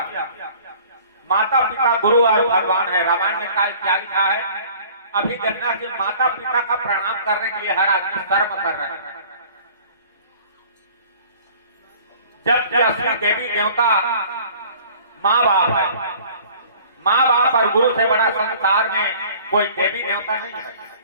माता पिता गुरु और भगवान है, रामायण में क्या लिखा है, अभी देखना कि माता पिता का प्रणाम करने के लिए हर आदमी कर्म कर रहे हैं, जबकि असली देवी देवता माँ बाप है। माँ बाप और गुरु से बड़ा संसार में कोई देवी देवता नहीं है।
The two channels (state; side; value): inverted; both; correlation -0.49